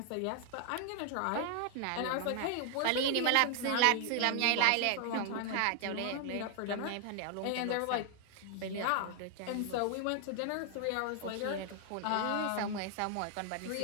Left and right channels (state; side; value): different; both; correlation 0.00